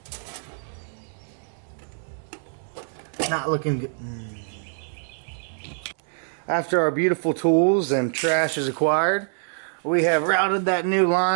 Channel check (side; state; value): left; silent; digital silence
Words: Not looking good. After our beautiful tools and trash is acquired, we have routed that new